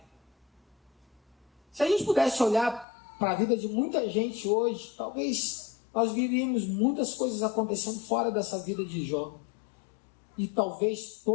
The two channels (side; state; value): right; drops out; at 2.9 s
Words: Se a gente pudesse olhar para a vida de muita gente hoje, talvez nós viríamos muitas coisas acontecendo fora dessa vida de Jó. E talvez